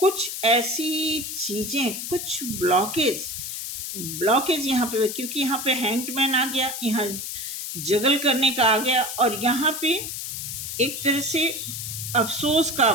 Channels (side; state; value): left; noise; hiss, 6 dB below the sound